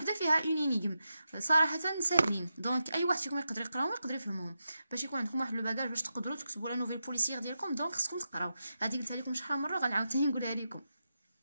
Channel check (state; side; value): inverted; both; correlation -0.88